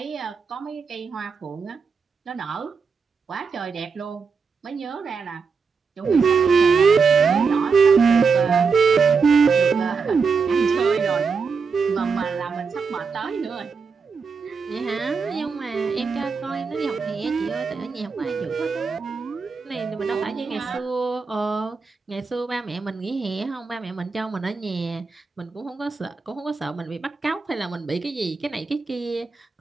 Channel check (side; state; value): left; quieter; 5.2 dB